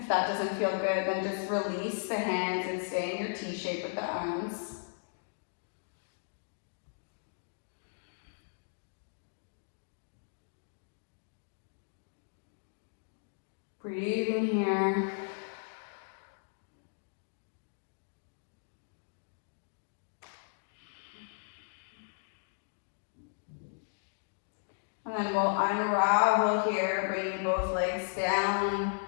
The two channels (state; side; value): silent; right; digital silence